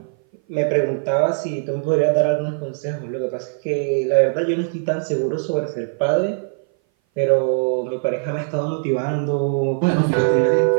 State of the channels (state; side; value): silent; left; 58 dB below the other